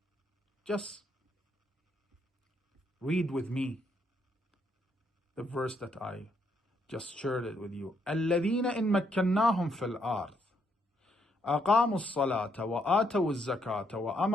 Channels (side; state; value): both; normal; correlation 0.74